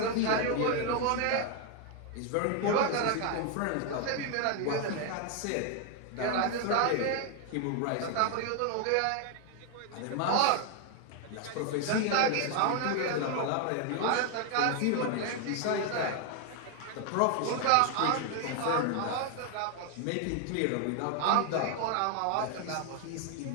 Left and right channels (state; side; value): different; both; correlation 0.01